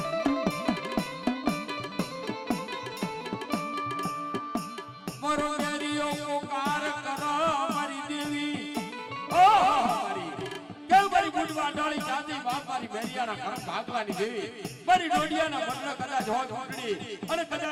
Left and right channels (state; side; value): identical; both; correlation 1.00